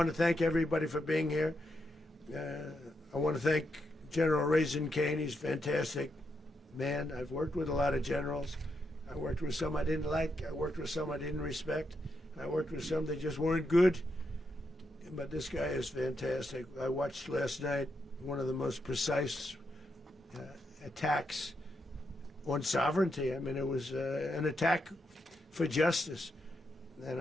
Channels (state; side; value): normal; both; correlation 0.82